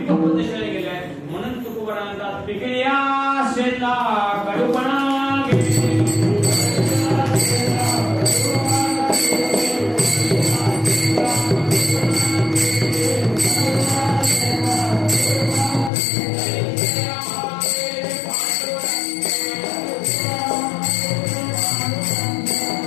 दिशेला गेले आहे. म्हणून तुकोबारा म्हणतात पिकल्या शेला कडूपणा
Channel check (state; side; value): drops out; right; at 15.9 s